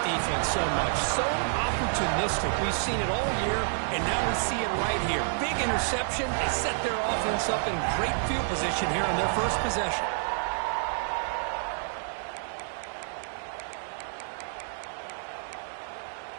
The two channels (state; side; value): silent; left; 59 dB below the other